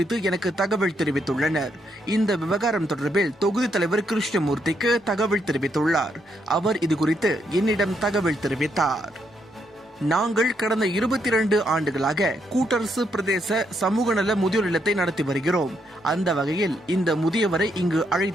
எனக்கு தகவல் தெரிவித்துள்ளனர். இந்த விவகாரம் தொடர்பில் தொகுதி தலைவர் கிருஷ்ணமூர்த்திக்கு தகவல் தெரிவித்துள்ளார். அவர் இது குறித்து என்னிடம் தகவல் தெரிவித்தார். நாங்கள் கடந்த 22 ஆண்டுகளாக கூட்டரசு பிரதேச சமூக நல முதியோர் இல்லத்தை நடத்தி வருகிறோம். அந்த வகையில் இந்த முதியவரை இங்கு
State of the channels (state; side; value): normal; both; correlation 0.77